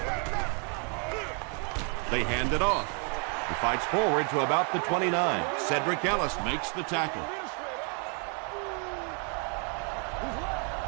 They hand it off. He fights forward to about the 29. Cedric Ellis makes the tackle.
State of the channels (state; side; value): quieter; left; 39.0 dB